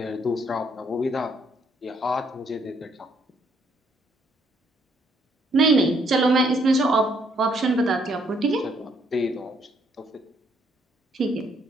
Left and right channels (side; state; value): both; normal; correlation 0.69